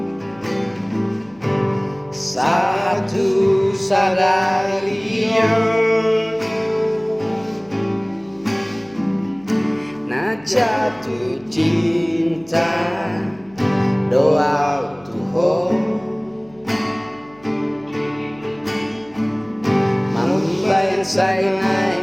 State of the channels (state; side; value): noise; left; hum, 27 dB below the sound